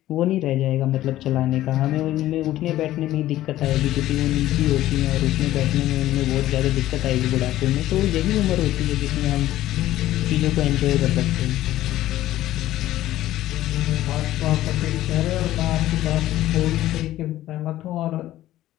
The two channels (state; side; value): quieter; right; 14.5 dB